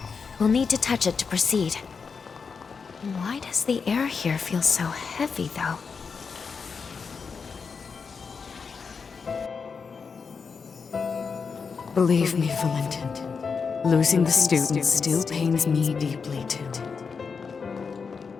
We'll need to touch it to proceed. Why does the air here feel so heavy, though? Believe me, Valentin. Losing the students still pains me deeply, too.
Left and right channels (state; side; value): quieter; right; 5.4 dB